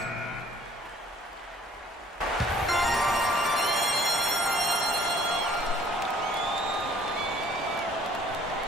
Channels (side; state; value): both; normal; correlation 0.58